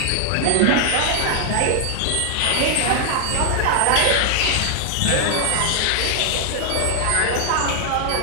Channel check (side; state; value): both; different; correlation 0.00